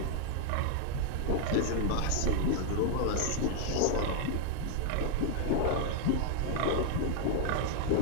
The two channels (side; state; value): both; different; correlation 0.00